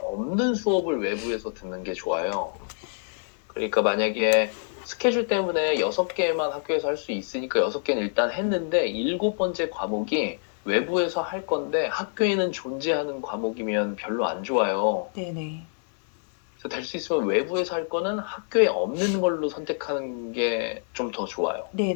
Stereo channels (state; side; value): silent; right; 61 dB below the other